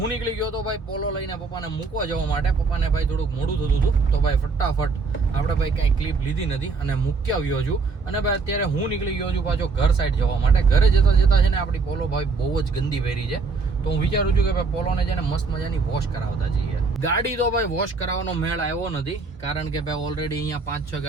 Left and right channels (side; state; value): left; quieter; 4.3 dB